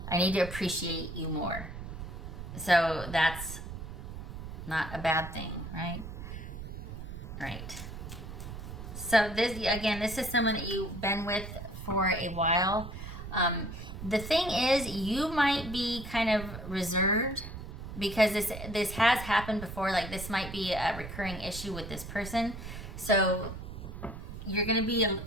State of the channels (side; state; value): right; noise; rumble, 9 dB below the sound